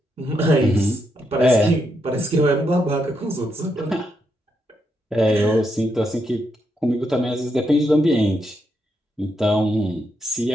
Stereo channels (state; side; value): normal; both; correlation 0.80